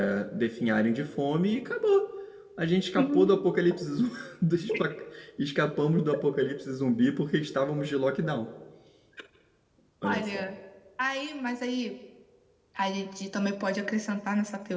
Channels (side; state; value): both; identical; correlation 1.00